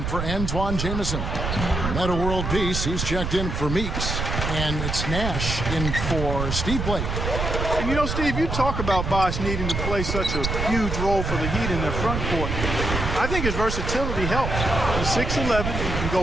for Antoine Jamison. Meta World Peace, he's checked in for Meeks. And it's Nash in for Steve Blake. And you know, Steve, you talk about Bosh needing to play such a huge role for the Heat in their front court. I think his versatility helps. He's 6'11", he can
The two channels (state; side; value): noise; right; rumble, 2 dB below the sound